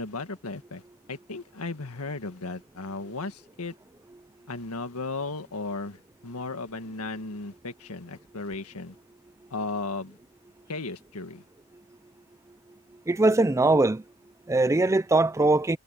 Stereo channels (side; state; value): both; normal; correlation 0.66